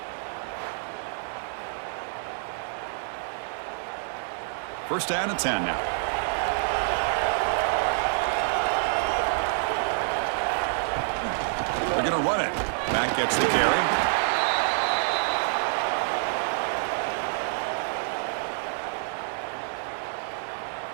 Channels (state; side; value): silent; left; 60 dB below the other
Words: First down and 10 now. They're going to run it. Back gets the carry.